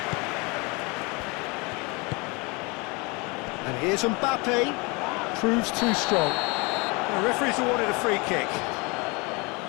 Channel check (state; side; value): quieter; right; 27.8 dB